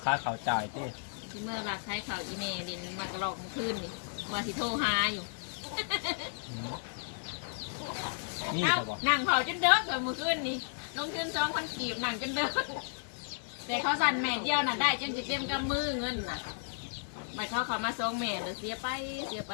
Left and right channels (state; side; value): silent; right; digital silence